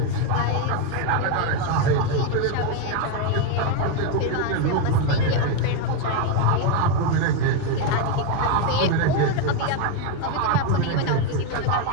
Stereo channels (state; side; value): different; both; correlation 0.02